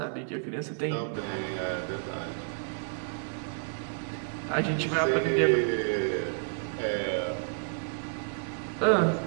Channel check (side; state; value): left; silent; digital silence